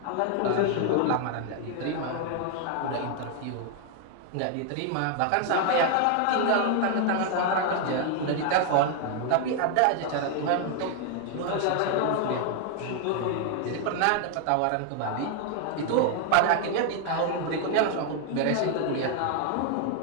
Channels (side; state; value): both; different; correlation 0.00